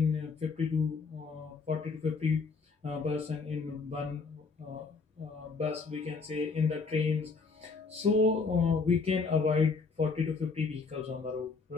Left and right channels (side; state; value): right; quieter; 4.5 dB